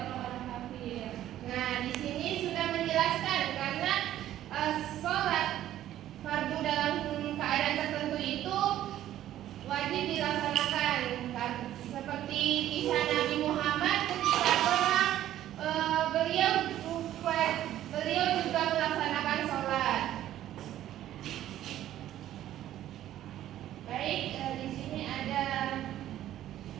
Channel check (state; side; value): quieter; left; 12.7 dB